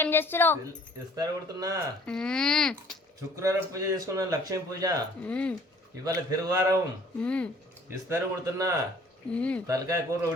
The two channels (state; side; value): normal; both; correlation 0.54